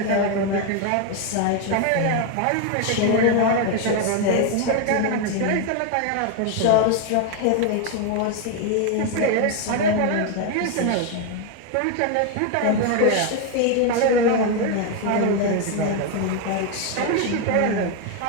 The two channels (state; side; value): different; both; correlation 0.01